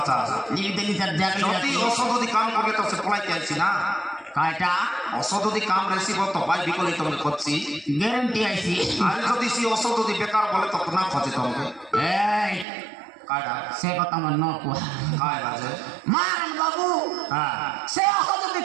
चा लिपि देली सर जाके যদি অসদদি কাম করলে তো সে পলাই আইছি না কাটা অসদদি কাম রেসিব তো ভাই বিকলি তুমি করছি গ্যারান্টি আইছি আর যদি সে অসদদি বেকার বলে তো না খোঁজে তোমাকে এই কাটা সে কথা মন ন কো কাই বাজে মারন বাবু সে অসদদি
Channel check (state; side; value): drops out; left; at 12.7 s